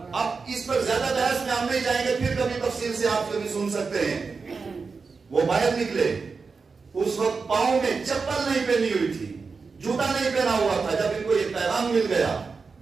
اب اس پر زیادہ بحث میں ہم نہیں جائیں گے، پھر کبھی تفصیل سے آپ کبھی سن سکتے ہیں۔ وہ باہر نکلے، اس وقت پاؤں میں چپل نہیں پہنی ہوئی تھی، جوتا نہیں پہنا ہوا تھا۔ جب ان کو یہ پیغام مل گیا،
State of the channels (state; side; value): quieter; left; 4.8 dB